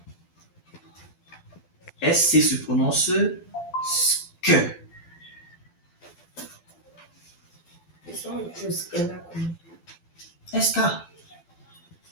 SC se prononce sk. Et ça, le sk là, comment? SK.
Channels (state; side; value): late; right; 12 ms